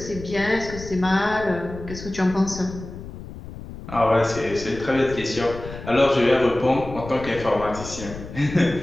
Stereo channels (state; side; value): noise; left; rumble, 12 dB below the sound